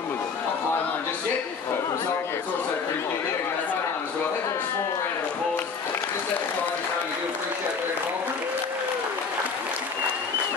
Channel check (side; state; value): right; quieter; 5.3 dB